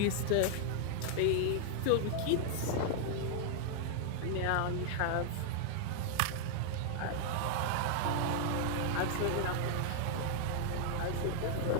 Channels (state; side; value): different; both; correlation 0.00